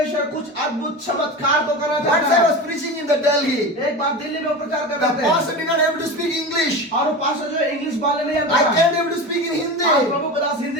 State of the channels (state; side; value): normal; both; correlation 0.27